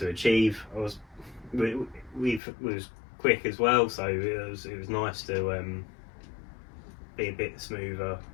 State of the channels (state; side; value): drops out; right; at 2.4 s